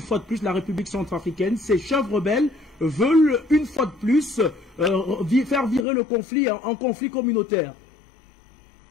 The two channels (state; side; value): drops out; right; at 5.9 s